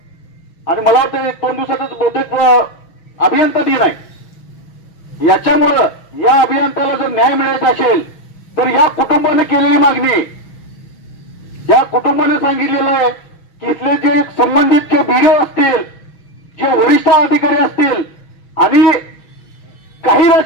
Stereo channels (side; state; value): right; late; 6.2 ms